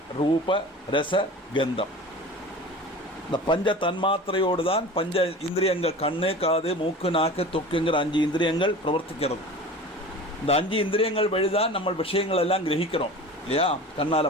ரூப, ரச, கந்தம். இந்த பஞ்ச தன்மாத்திரையோடு தான் பஞ்ச இந்திரியங்கள், கண்ணு, காது, மூக்கு, நாக்கு, தொக்குங்கிற 5 இந்திரியங்கள் பிரவர்த்திக்கிறது. இந்த 5 இந்திரியங்கள் வழிதான் நம்ம விஷயங்கள் எல்லாம் கிரகிக்கிறோம் இல்லையா?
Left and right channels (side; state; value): both; normal; correlation 0.36